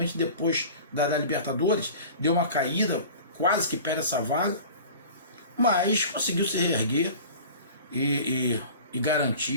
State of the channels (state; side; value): inverted; both; correlation -0.40